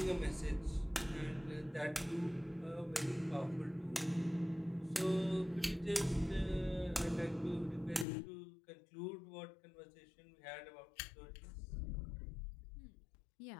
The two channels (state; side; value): drops out; right; at 8.1 s